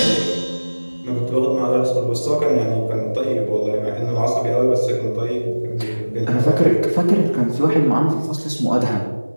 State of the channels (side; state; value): both; inverted; correlation -1.00